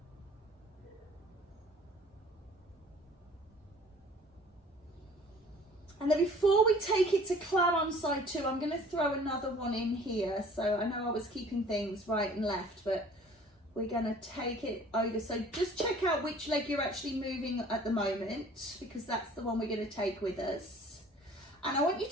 And then before we take it to clam on side 2, I'm going to throw another one in here. So I know I was keeping things right and left, but we're going to take it over. So just check out which leg you're actually moving at the moment, because that's the one we're going to take with us. And I want you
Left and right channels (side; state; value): both; normal; correlation 0.50